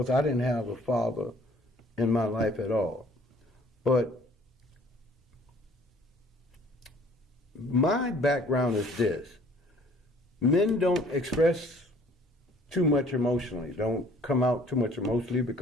I didn't have a father in my life at all. But my background is this. Men don't express too much emotionally. Don't come out too much emotionally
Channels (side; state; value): both; normal; correlation 0.55